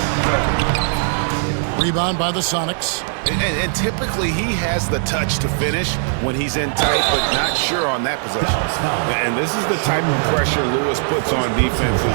Rebound by the Sonics. And typically he has the touch to finish when he's in tight, but not sure on that possession. And this is the type of pressure Lewis puts on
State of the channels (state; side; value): silent; left; digital silence